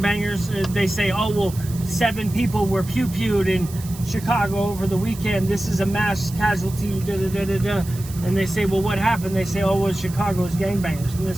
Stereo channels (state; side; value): noise; right; hiss, 16 dB below the sound